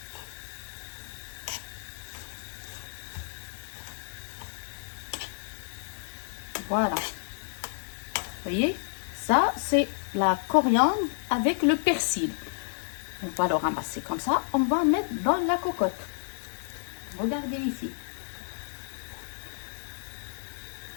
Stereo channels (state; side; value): silent; right; digital silence